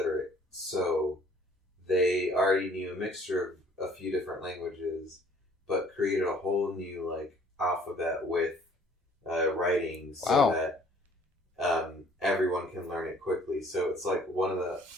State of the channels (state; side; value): normal; both; correlation 0.56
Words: So they already knew a mixture of a few different languages, but created a whole new alphabet with writing so that everyone can learn it quickly. So it's like